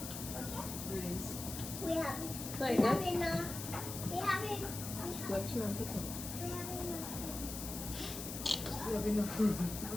We have Like enough. that? We have enough. What you want to do? We have enough. You have enough room,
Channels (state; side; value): noise; left; hiss, 7 dB below the sound